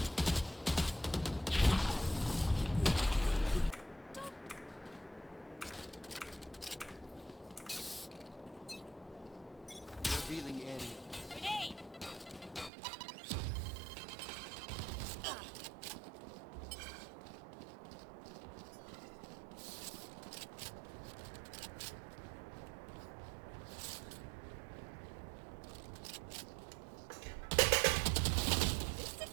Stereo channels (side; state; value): left; drops out; at 12.7 s